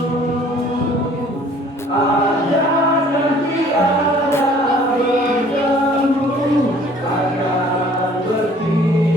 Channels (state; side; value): normal; both; correlation 0.54